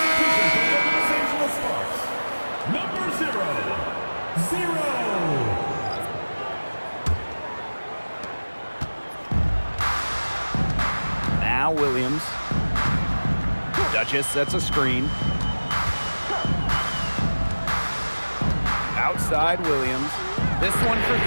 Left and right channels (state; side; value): inverted; both; correlation -1.00